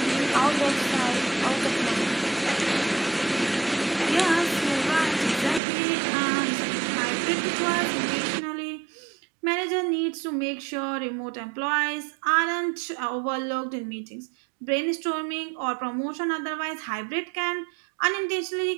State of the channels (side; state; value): left; drops out; at 5.6 s